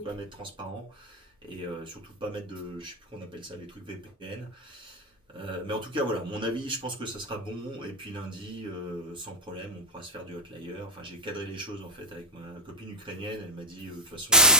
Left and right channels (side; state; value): both; normal; correlation -0.05